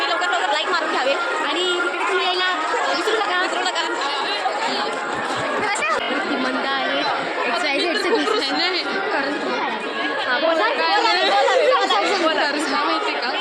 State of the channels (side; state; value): both; identical; correlation 1.00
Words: लवकर लाईक मारून घ्यावे. आणि तिकडे तुम्ही यायला विसरू नका. ती मंद आहे. एक्सायटेड माहिती का